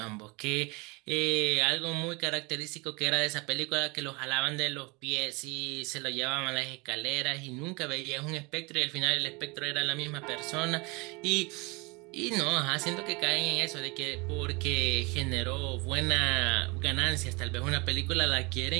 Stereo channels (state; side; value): quieter; left; 27.4 dB